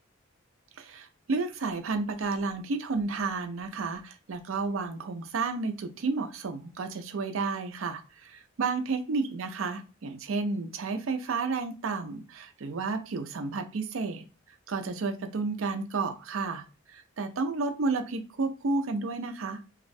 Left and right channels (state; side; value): quieter; left; 3.6 dB